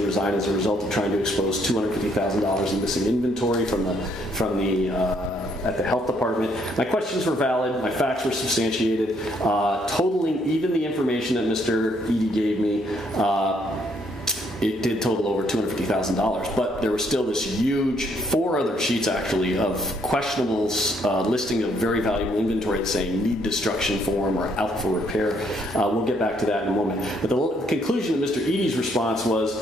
resign as a result of trying to expose $250,000 in missing inventory at the health department. My questions were valid. My facts were substantiated. Totaling even the information that Mr. Eadie gave me, it did total over $250,000. But there was still this huge, 4 other sheets actually, of questionables listing of very valuable inventory saying need destruction form or out for repair. We'll get back to that in a moment. But the conclusion of Mr. Eadie's response was,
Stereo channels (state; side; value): normal; both; correlation 0.69